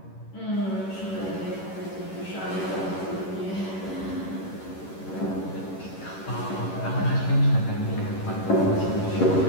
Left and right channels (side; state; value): right; late; 11 ms